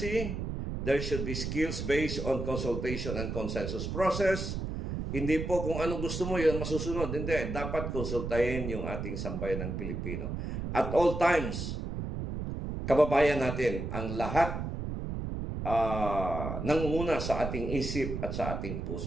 There should be skills based on consultation and consensus process. Hindi po kung anong gusto mo, yun masusunod. Hindi. Dapat konsultahin yung ating sambayan ng Pilipino. At all times, kababayan natin, ang lahat nangunguna sa ating isip at sa ating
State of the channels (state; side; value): noise; right; rumble, 4 dB below the sound